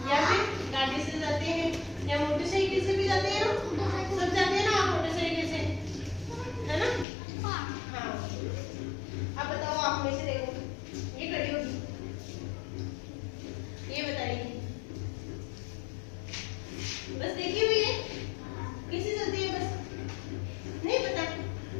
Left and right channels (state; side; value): drops out; right; at 7.1 s